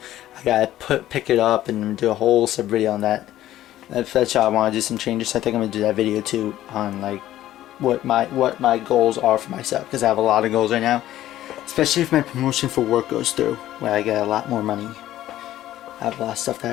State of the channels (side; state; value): right; quieter; 13.6 dB